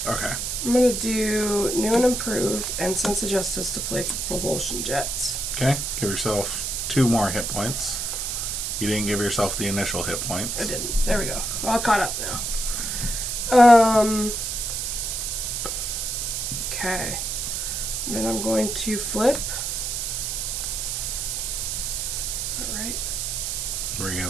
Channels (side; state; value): right; noise; hiss, 2 dB below the sound